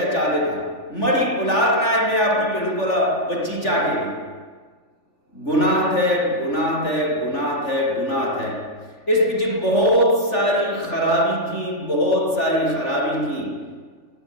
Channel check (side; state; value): right; late; 3.4 ms